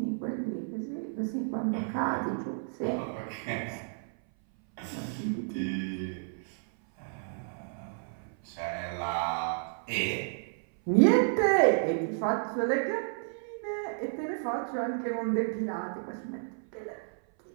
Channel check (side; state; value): left; silent; 57 dB below the other